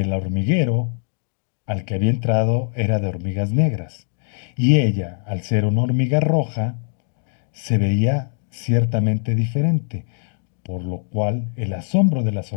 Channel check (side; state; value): right; silent; 64 dB below the other